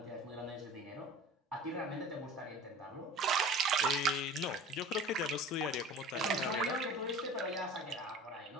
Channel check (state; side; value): normal; both; correlation 0.40